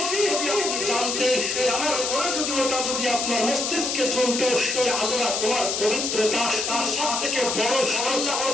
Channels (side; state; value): left; noise; hiss, 1 dB below the sound